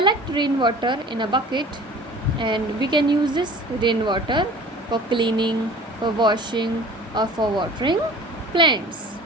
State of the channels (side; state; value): both; normal; correlation 0.44